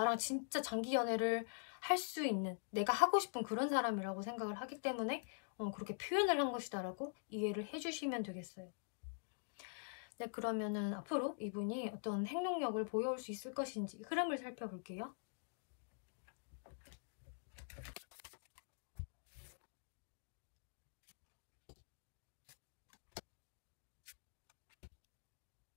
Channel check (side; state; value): right; silent; digital silence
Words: 진짜 장기 연애를 할 수 있는, 내가 하고 싶은 그런 사람이라고 생각을 하기 때문에 그렇게 표현을 한 것이다 라고 이해를 해주시면 되겠어요. 네, 그러면은 앞으로 이분이 어떤 행동력을 보여올 수 있을 것인지 흐름을 살펴볼게요.